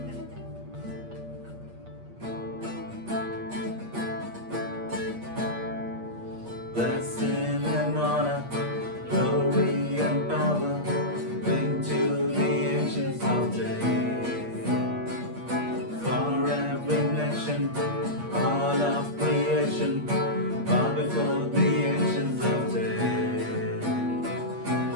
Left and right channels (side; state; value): left; late; 8.5 ms